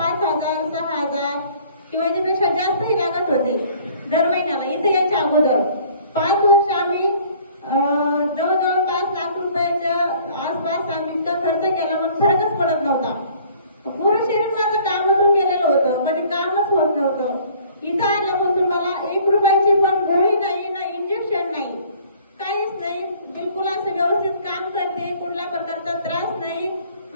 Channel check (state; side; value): inverted; both; correlation -0.54